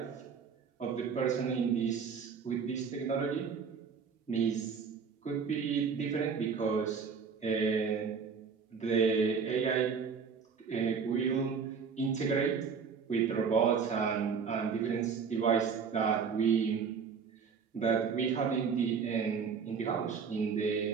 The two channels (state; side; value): quieter; left; 6.0 dB